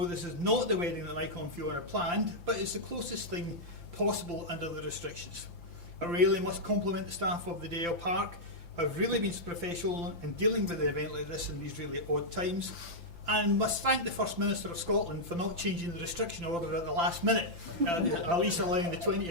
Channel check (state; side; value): late; left; 5.9 ms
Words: this is not the wedding that Michael and Fiona planned, but it's the closest thing possible under the restrictions. I really must compliment the staff of the Dalziel Park, who have really been professional in dealing with an event like this in these really odd times, and must thank the First Minister of Scotland for not changing the restriction order at the last minute, at least allowing the 20